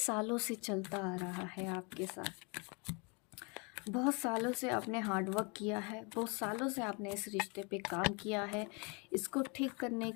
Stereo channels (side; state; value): right; quieter; 32.0 dB